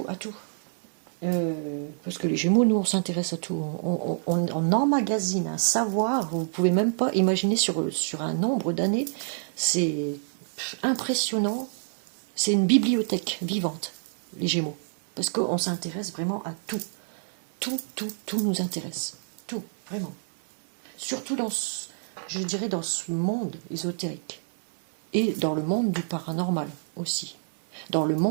Parce que les Gémeaux, nous, on s'intéresse à tout. On emmagasine un savoir, vous ne pouvez même pas imaginer sur un nombre d'années. C'est impressionnant. C'est une bibliothèque vivante, les Gémeaux. Parce qu'on s'intéresse vraiment à tout. Tout nous intéresse. Tout, vraiment. Surtout je dirais, dans ce monde ésotérique. Et dans le monde du paranormal aussi. Dans le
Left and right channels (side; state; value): left; silent; digital silence